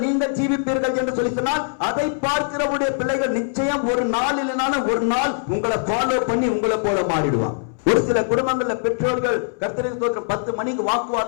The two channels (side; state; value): right; silent; 65 dB below the other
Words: நீங்கள் ஜீவிப்பீர்கள் என்று சொல்லி சொன்னால், அதை பார்க்கிறவுடைய பிள்ளைகள் நிச்சயம் ஒரு நாள் இல்லைனாலும் ஒரு நாள் உங்களை ஃபாலோ பண்ணி உங்களை போல மாறிடுவான். ஒரு சில குடும்பங்கள்ல பெற்றோர்கள் கர்த்தருக்கு ஸ்தோத்திரம் 10 மணிக்கு